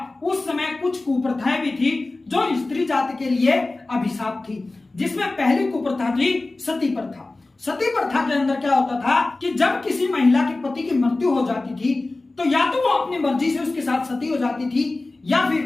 उस समय कुछ कुप्रथाएं भी थी जो स्त्री जाति के लिए अभिशाप थी, जिसमें पहली कुप्रथा थी सती प्रथा। सती प्रथा के अंदर क्या होता था कि जब किसी महिला के पति की मृत्यु हो जाती थी तो या तो वो अपनी मर्जी से उसके साथ सती हो जाती थी या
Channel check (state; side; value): quieter; right; 3.1 dB